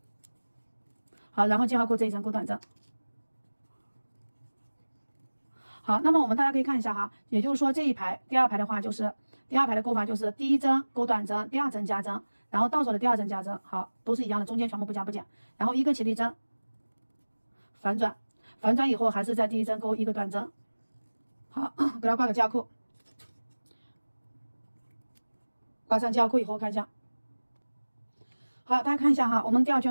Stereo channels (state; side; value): inverted; both; correlation -1.00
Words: 好，然后记号扣这一针勾短针。好，那么我们大家可以看一下哈，也就是说这一排第2排的话就是第2排的勾法就是第1针勾短针，第2针加针，然后倒手的第2针加针，好，都是一样的，中间全部不加不减，然后一个起立针，反转，反转以后还是在第1针勾一个短针，好，给它挂个记号扣，挂上交扣以后看一下。好，大家看一下哈，我们第二